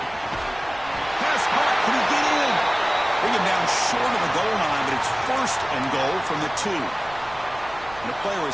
Pass caught. Can he get in? Bring him down short of the goal line, but it's 1st and goal from the 2. And the player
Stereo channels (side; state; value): right; noise; rumble, 21 dB below the sound